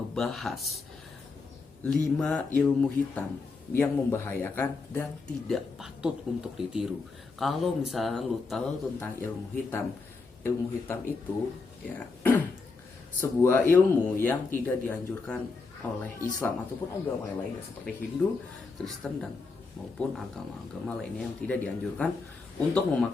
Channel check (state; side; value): quieter; right; 4.2 dB